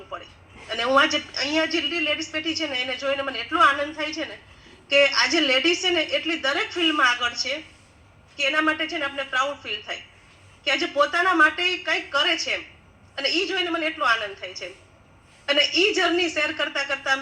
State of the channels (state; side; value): identical; both; correlation 1.00